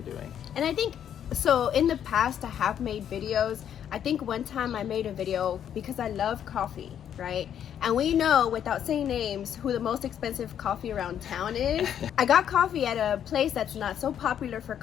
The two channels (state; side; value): quieter; right; 9.4 dB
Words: doing. And I think, so in the past I have made videos. I think one time I made a video because I love coffee, right? And we know, without saying names, who the most expensive coffee around town is. I got coffee at a place that's not so popular for